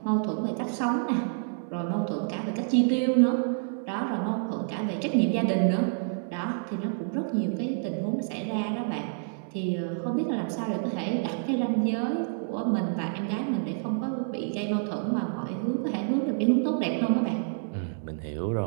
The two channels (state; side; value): silent; left; 58 dB below the other